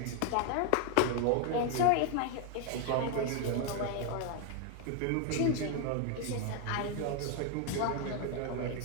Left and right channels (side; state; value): both; different; correlation 0.00